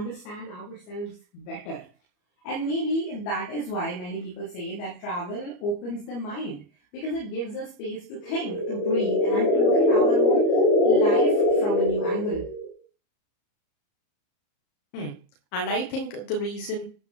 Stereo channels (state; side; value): late; right; 34 ms